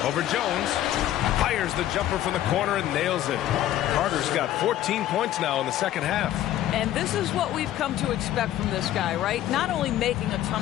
Over Jones. Fires the jumper from the corner and nails it. Carter's got 14 points now in the second half. And this is what we've come to expect from this guy, right? Not only making a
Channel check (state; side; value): quieter; right; 12.9 dB